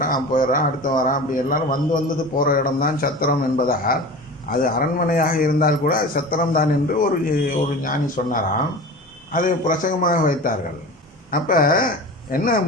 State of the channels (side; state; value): both; normal; correlation 0.34